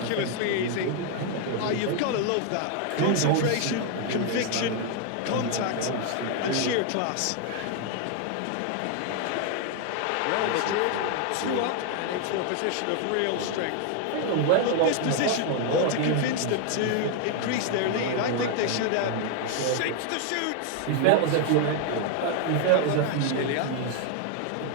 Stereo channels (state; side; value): different; both; correlation 0.00